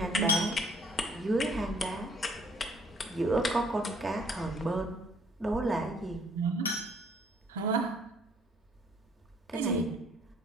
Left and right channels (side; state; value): both; normal; correlation 0.60